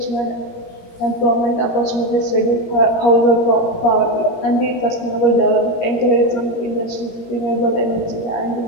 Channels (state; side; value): late; right; 17 ms